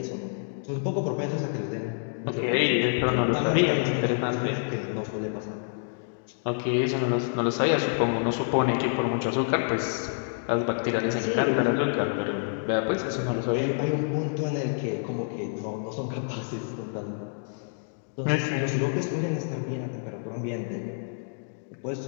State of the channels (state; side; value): silent; right; digital silence